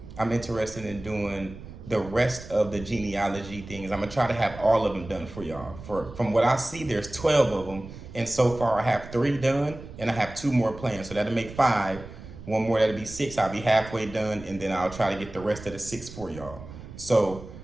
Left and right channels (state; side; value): noise; right; rumble, 14 dB below the sound